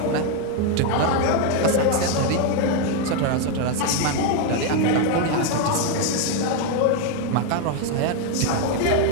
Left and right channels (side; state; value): both; different; correlation 0.01